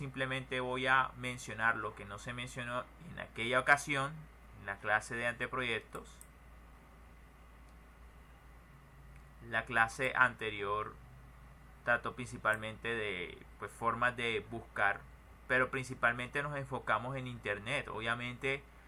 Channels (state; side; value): identical; both; correlation 1.00